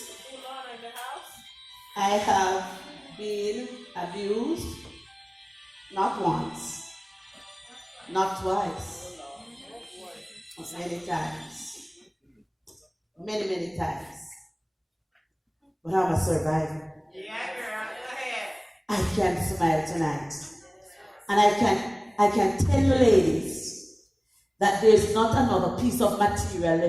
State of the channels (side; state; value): both; identical; correlation 1.00